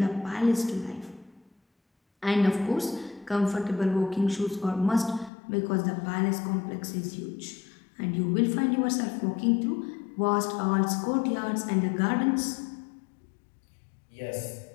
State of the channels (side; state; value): right; drops out; at 5.3 s